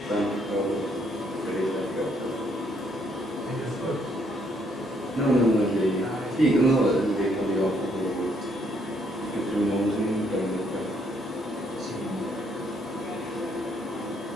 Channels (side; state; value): both; normal; correlation 0.70